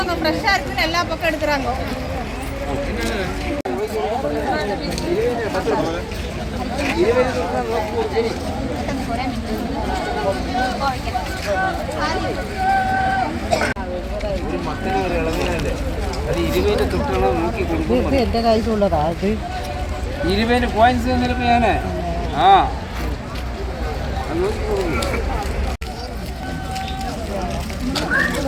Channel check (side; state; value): both; identical; correlation 1.00